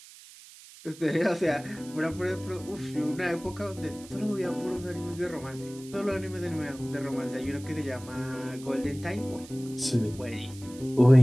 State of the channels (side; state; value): right; noise; hiss, 19 dB below the sound